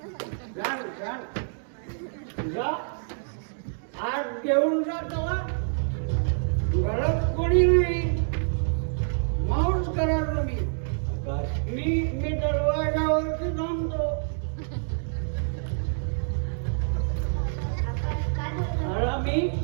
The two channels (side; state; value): left; silent; digital silence